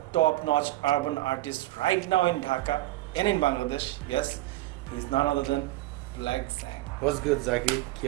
top-notch urban artists right now in Dhaka and in Bangladesh. Yes, he's none other than Black Sang. What's good, Zaki? কি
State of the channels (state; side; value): quieter; left; 17.3 dB